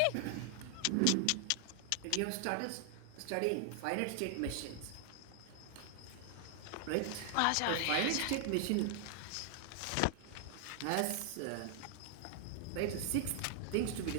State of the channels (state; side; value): different; both; correlation 0.00